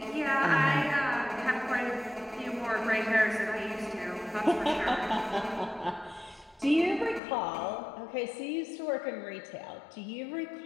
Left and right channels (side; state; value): right; drops out; at 7.2 s